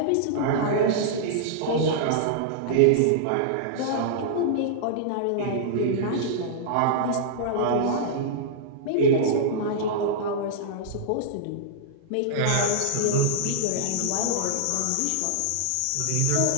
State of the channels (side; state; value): both; different; correlation -0.02